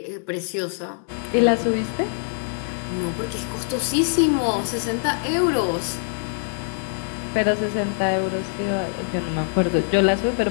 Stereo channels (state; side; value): silent; right; 60 dB below the other